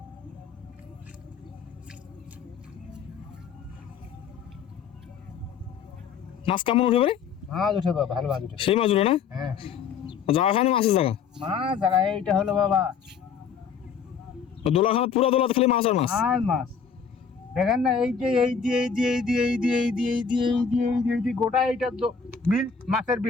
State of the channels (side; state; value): right; quieter; 6.4 dB